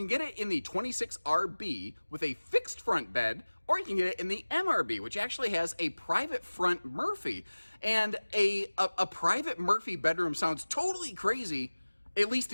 get it in the 26RB with a fixed front bed, or you can get it in the MRB, which actually has a private front Murphy. And a private Murphy bedroom sounds totally crazy. At least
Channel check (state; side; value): inverted; both; correlation -1.00